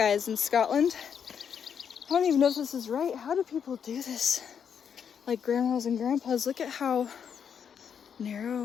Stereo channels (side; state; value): right; quieter; 7.5 dB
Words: in Scotland. I don't even know if this is right. How do people do this? Like grandmas and grandpas, look at how